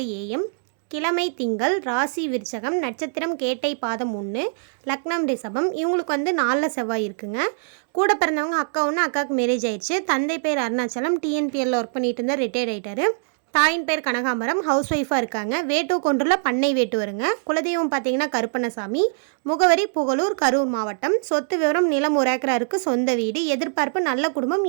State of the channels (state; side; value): silent; left; digital silence